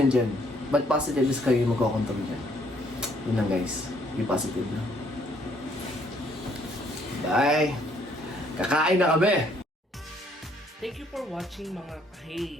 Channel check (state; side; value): normal; both; correlation 0.66